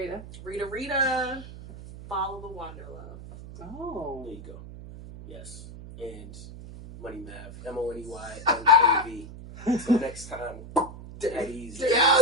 Rita. Follow the Wanderlove. Oh. There you go. Yes. And Money Mav. MONEYMAV. Until next time. Daddy's. Yeah,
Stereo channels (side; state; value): right; noise; hum, 14 dB below the sound